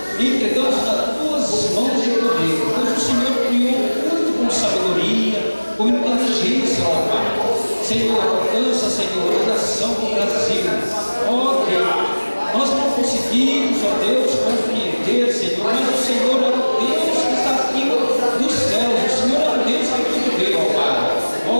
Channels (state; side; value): inverted; both; correlation -1.00